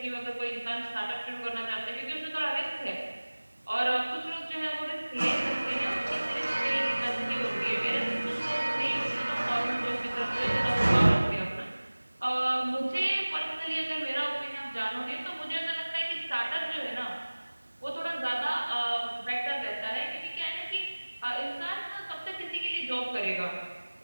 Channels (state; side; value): inverted; both; correlation -1.00